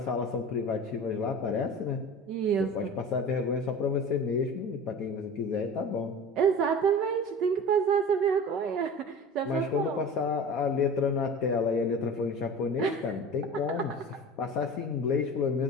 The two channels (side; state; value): both; normal; correlation 0.36